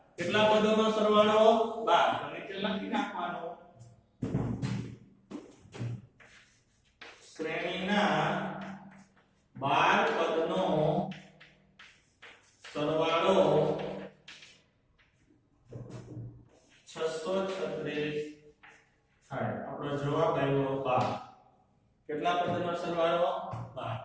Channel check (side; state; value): both; identical; correlation 1.00